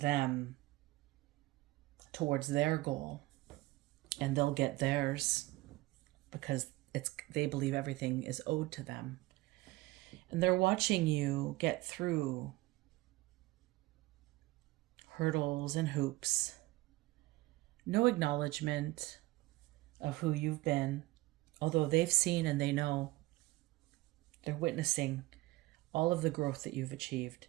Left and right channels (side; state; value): left; quieter; 19.9 dB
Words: towards their goal, and they'll get theirs because they believe everything is owed to them. And they're watching you get through hurdles and hoops. No acknowledgement of who you've been, although they've seen and they know. They're witnessing all of the growth that you've achieved,